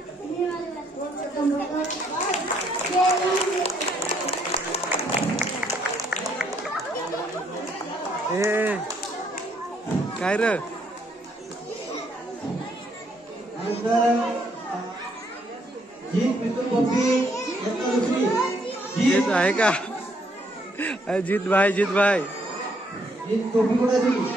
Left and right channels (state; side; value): normal; both; correlation 0.70